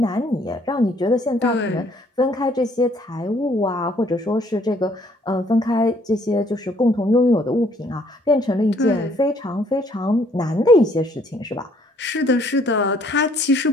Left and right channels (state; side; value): normal; both; correlation 0.63